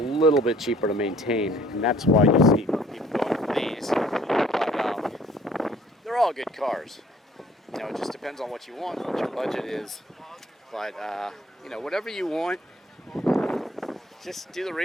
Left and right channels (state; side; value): normal; both; correlation 0.57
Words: bit cheaper to maintain, and that's why you see people going for these. But they're all good cars. You know, it just depends on what you want, what your budget is. But you know, whatever you want, just do the